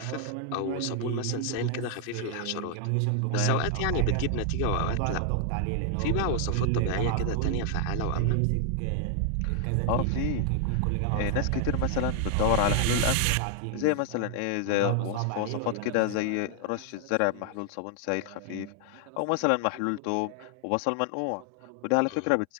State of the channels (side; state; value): both; different; correlation 0.00